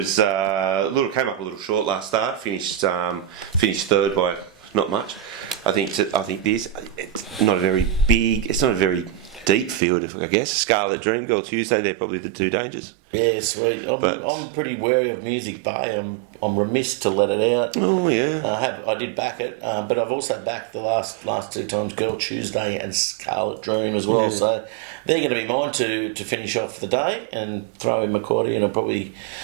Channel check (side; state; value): left; drops out; at 9.8 s